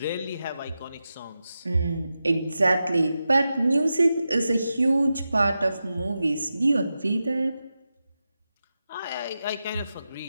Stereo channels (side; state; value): both; inverted; correlation -0.91